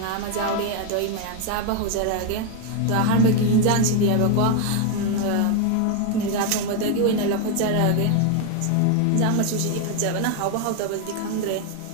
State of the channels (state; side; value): different; both; correlation 0.01